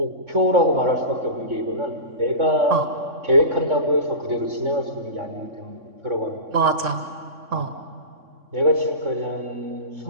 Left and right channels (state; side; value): late; left; 3.6 ms